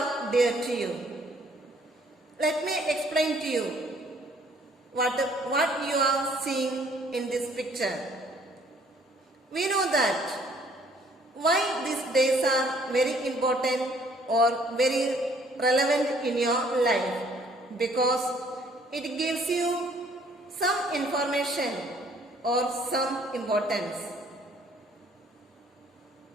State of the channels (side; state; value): both; normal; correlation 0.61